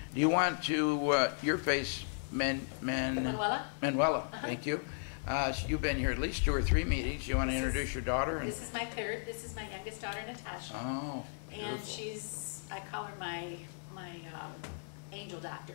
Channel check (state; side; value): silent; right; digital silence